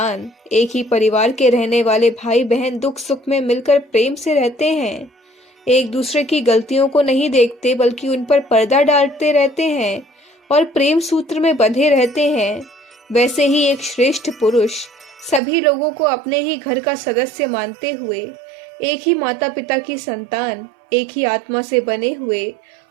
एक ही परिवार के रहने वाले भाई बहन दुख सुख में मिलकर प्रेम से रहते हैं, एक दूसरे की गलतियों को नहीं देखते बल्कि उन पर पर्दा डालते रहते हैं और प्रेम सूत्र में बंधे रहते हैं, वैसे ही एक श्रेष्ठ पुरुष सभी लोगों को अपने ही घर का सदस्य मानते हुए एक ही माता पिता की संतान, एक ही आत्मा से बने हुए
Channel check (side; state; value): left; drops out; at 15.4 s